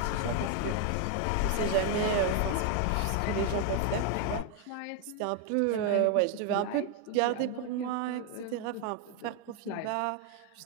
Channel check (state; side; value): different; both; correlation 0.01